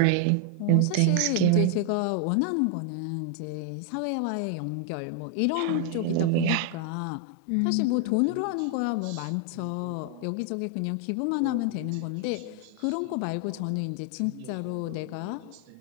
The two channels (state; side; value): different; both; correlation 0.00